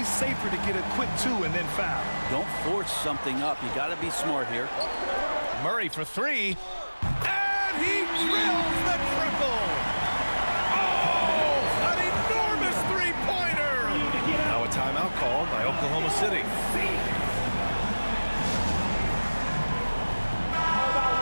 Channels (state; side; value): inverted; both; correlation -1.00